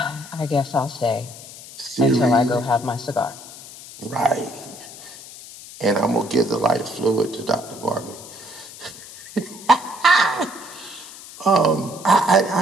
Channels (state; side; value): noise; left; hiss, 16 dB below the sound